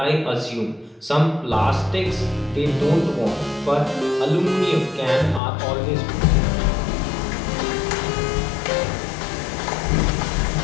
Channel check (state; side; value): drops out; right; at 5.4 s